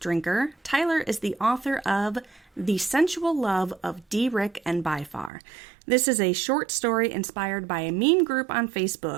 Tyler is the author of The Sensual Love of D. Rick and Byfar. This is a short story inspired by a meme group on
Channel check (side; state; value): left; drops out; at 5.3 s